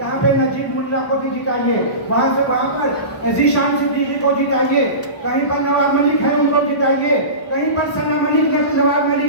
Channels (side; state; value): right; late; 1.1 ms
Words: पे नजीब मुल्ला को भी जिताइए, वहाँ से वहाँ पर जीशान सिद्दीकी को जिताइए, कहीं पर नवाब मलिक है उनको जिताइए, कहीं पर सना मलिक ने नवाब